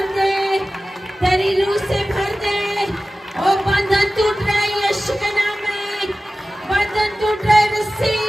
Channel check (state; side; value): normal; both; correlation 0.96